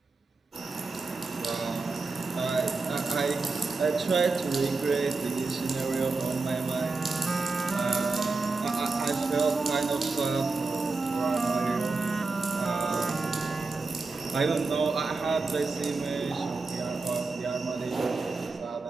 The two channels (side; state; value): left; quieter; 3.9 dB